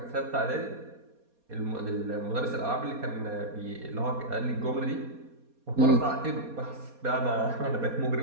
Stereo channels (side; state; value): left; late; 4.2 ms